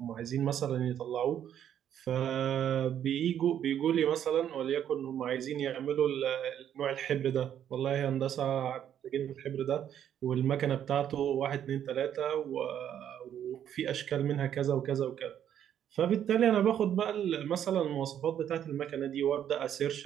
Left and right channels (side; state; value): left; quieter; 9.9 dB